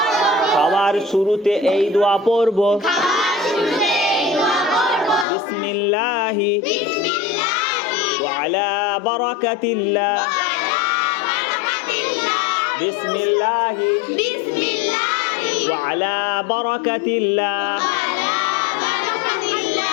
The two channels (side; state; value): right; drops out; at 5.2 s